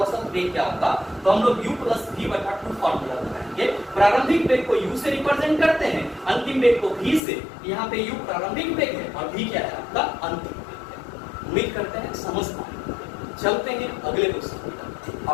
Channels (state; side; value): drops out; right; at 7.2 s